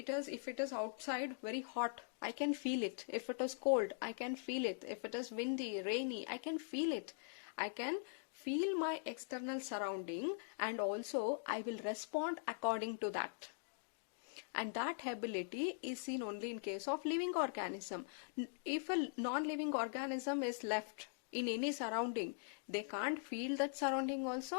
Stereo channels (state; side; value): silent; right; digital silence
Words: it is outside very hot, I can feel it. If it is cold, I can feel it. If it is windy, rainy, I can feel it. I can feel my external surrounding, and also I will respond according to that. And that ability is seen only in case of living organism. If a non-living organism is left in any surrounding, they can't feel that surrounding also,